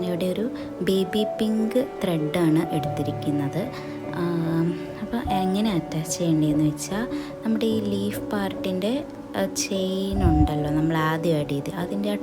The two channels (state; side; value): identical; both; correlation 1.00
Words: ഒരു ബേബി പിങ്ക് ത്രെഡാണ് എടുത്തിരിക്കുന്നത്. അപ്പോൾ എങ്ങനെ അറ്റാച്ച് ചെയ്യേണ്ടതെന്ന് വെച്ചാൽ, നമ്മുടെ ഈ ലീഫ് പാർട്ടിൻ്റെ ചെയിൻ ഉണ്ടല്ലോ, നമ്മൾ ആദ്യം ആഡ് ചെയ്ത് അതിൻ്റെ ആ